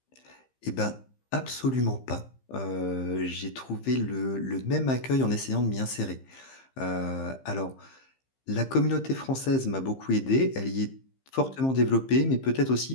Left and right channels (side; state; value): right; late; 15 ms